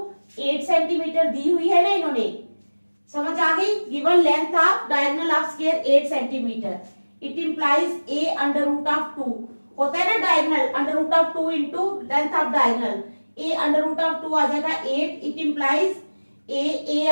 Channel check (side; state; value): both; inverted; correlation -1.00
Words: 8 centimetre दी हुई है ना इन्होंने, समझ आ गई। Given length of diagonal of square 8 centimetre, it implies a under root of 2, होता है ना diagonal, under root of 2 into length of diagonal, a under root of 2 आ जाएगा 8, इट इंप्लाइज ए